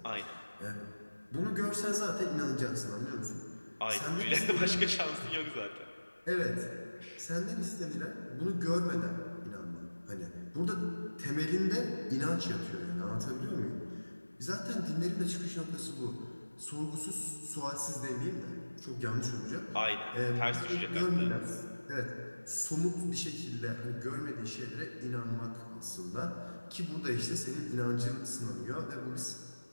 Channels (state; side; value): inverted; both; correlation -1.00